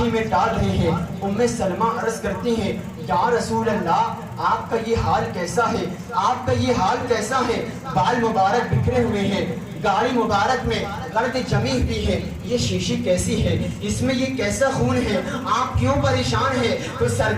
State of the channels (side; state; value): both; identical; correlation 1.00